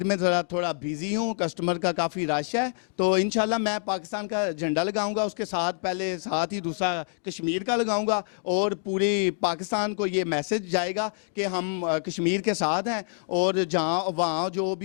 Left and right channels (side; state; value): right; silent; 60 dB below the other